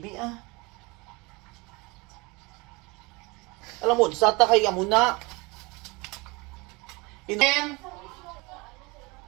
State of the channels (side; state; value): left; quieter; 25.6 dB